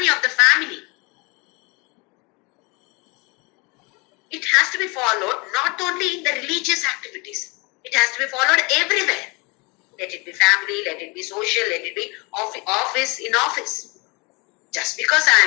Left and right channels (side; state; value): right; quieter; 28.1 dB